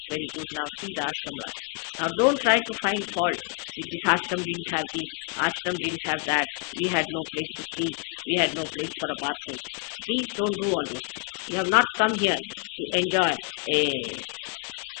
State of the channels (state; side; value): quieter; right; 35.5 dB